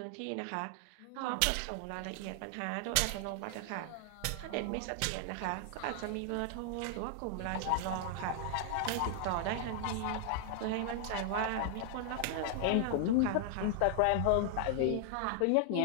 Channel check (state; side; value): different; both; correlation 0.00